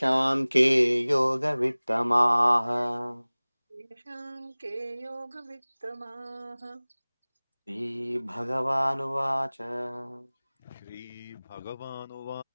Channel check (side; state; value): both; inverted; correlation -1.00